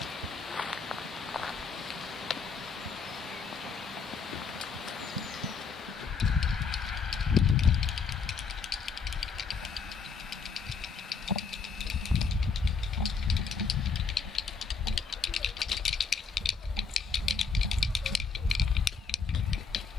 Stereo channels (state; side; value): quieter; right; 5.3 dB